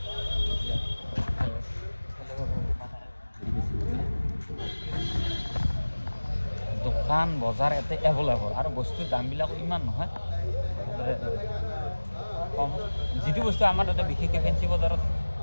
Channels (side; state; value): both; inverted; correlation -1.00